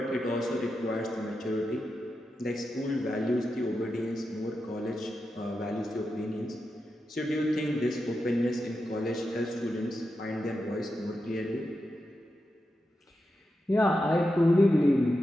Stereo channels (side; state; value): both; normal; correlation 0.89